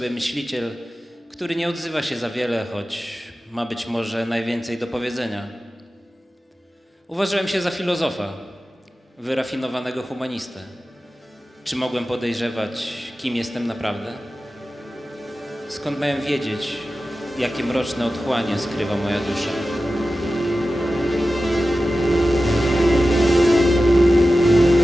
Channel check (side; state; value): both; normal; correlation 0.94